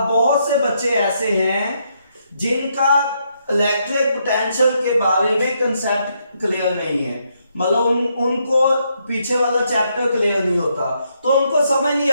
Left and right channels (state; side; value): inverted; both; correlation -0.76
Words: बहुत से बच्चे ऐसे हैं जिनका इलेक्ट्रिक पोटेंशियल के बारे में कंसेप्ट क्लियर नहीं है, मतलब उनको पीछे वाला चैप्टर क्लियर नहीं होता, तो उनको समझ नहीं